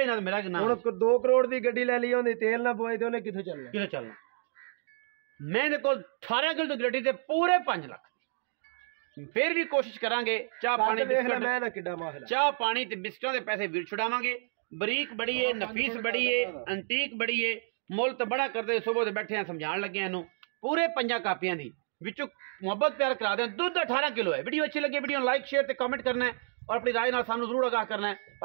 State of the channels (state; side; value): silent; left; digital silence